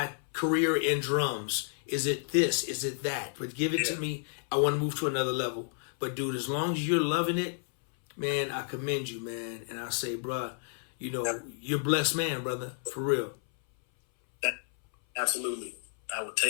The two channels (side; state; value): right; silent; 57 dB below the other